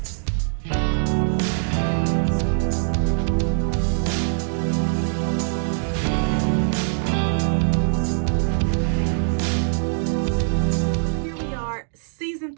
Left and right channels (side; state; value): left; silent; digital silence